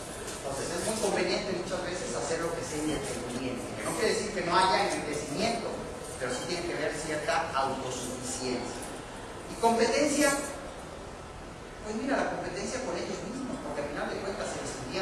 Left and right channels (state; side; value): identical; both; correlation 1.00